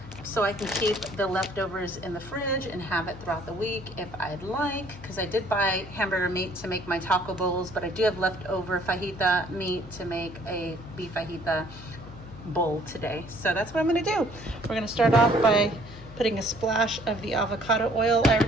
so I can keep the leftovers in the fridge and have it throughout the week if I'd like, because I did buy hamburger meat to make my taco bowls, but I do have leftover fajita meat to make a beef fajita bowl today. So that's what I'm going to do. We're going to start off by putting a splash of the avocado oil. I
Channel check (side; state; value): left; noise; hum, 17 dB below the sound